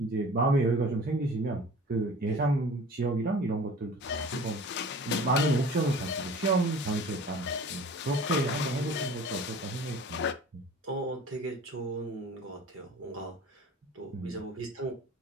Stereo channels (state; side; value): normal; both; correlation 0.43